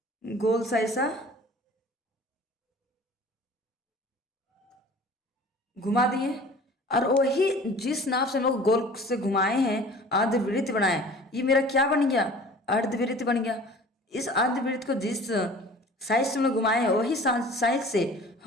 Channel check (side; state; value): both; normal; correlation 0.45